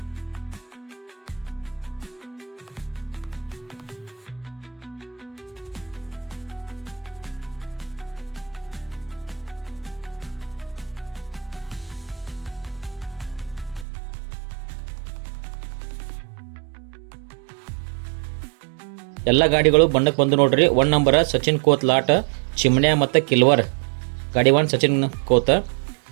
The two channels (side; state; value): left; drops out; at 13.9 s